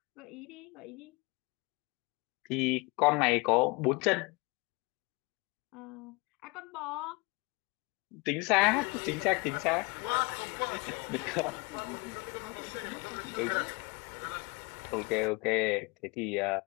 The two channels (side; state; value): right; quieter; 27.7 dB